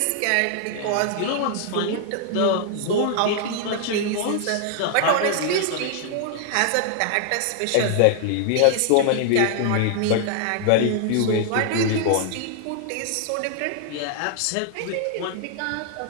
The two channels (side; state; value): both; different; correlation 0.00